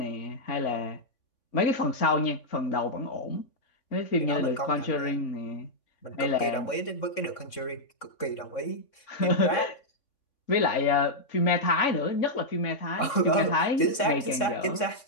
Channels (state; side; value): late; right; 3.5 ms